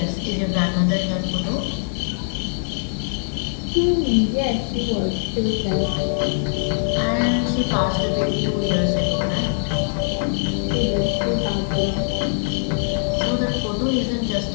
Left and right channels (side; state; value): right; silent; 57 dB below the other